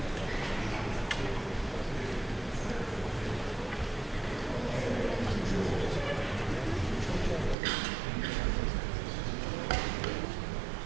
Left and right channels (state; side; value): drops out; left; at 7.6 s